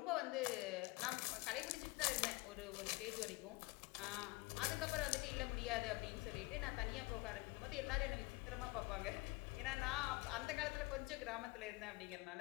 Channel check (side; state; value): right; quieter; 23.9 dB